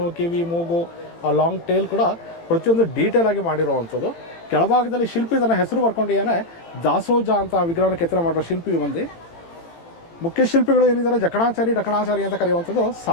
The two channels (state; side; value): late; right; 18 ms